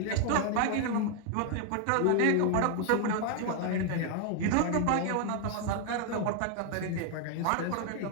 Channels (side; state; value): both; different; correlation 0.00